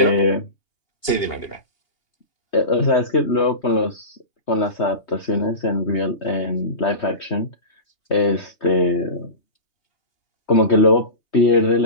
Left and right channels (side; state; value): right; late; 2.8 ms